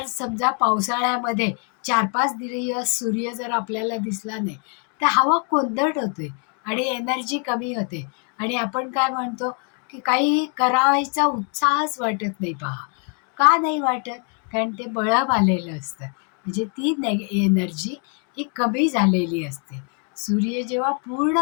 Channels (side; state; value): right; quieter; 39.9 dB